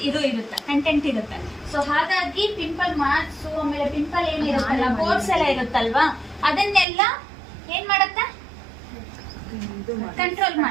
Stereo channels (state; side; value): drops out; left; at 6.9 s